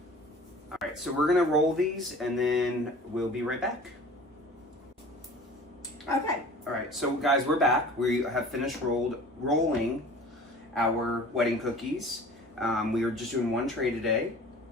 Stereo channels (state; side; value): normal; both; correlation 0.43